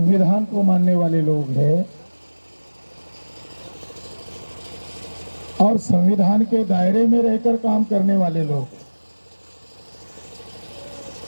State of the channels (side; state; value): both; inverted; correlation -1.00